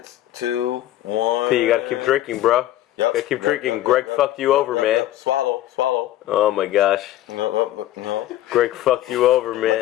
2, 1. Hey, you gotta keep drinking, bro. Yep. Gotta keep drinking. Greg fucked you over, man. Swallow. Oh my gosh. No. Greg fucked you over,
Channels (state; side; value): quieter; right; 13.9 dB